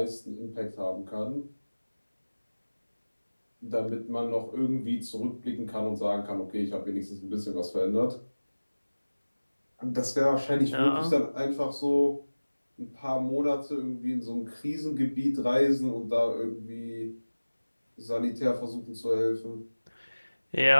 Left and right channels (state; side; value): inverted; both; correlation -1.00